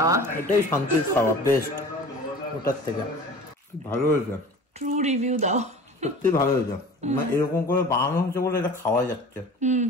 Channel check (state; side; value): normal; both; correlation 0.40